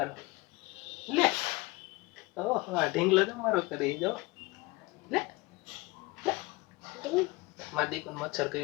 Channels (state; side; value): quieter; right; 23.3 dB